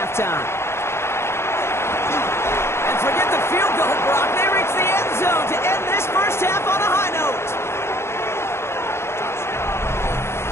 And forget the field goal, Brock. They reach the end zone to end this first half on a high note.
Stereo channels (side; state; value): right; late; 0.12 ms